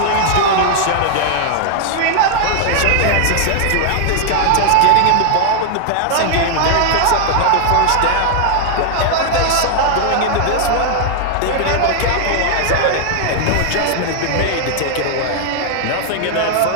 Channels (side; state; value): both; different; correlation 0.00